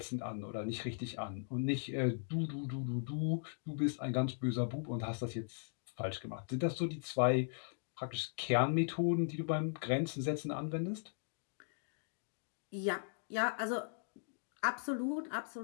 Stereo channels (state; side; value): silent; right; digital silence